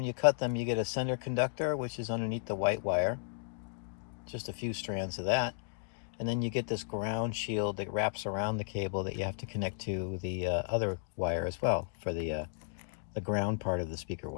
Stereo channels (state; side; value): silent; right; digital silence